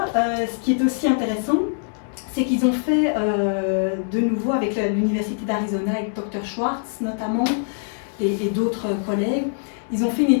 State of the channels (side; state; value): right; silent; digital silence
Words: ce qui est aussi intéressant, c'est qu'ils ont fait de nouveau avec l'Université d'Arizona, avec Dr. Schwartz notamment, et d'autres collègues, ils ont fait une